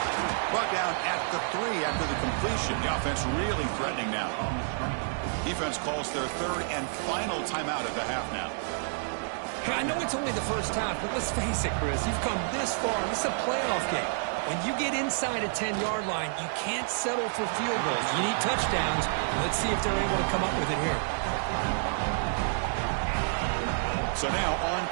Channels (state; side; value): silent; left; digital silence